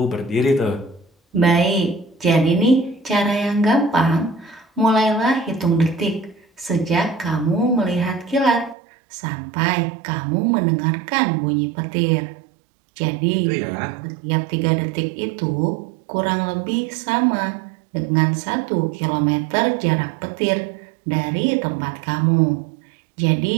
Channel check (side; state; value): left; drops out; at 8.8 s